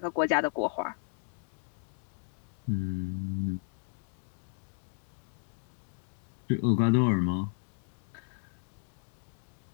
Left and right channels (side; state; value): right; silent; digital silence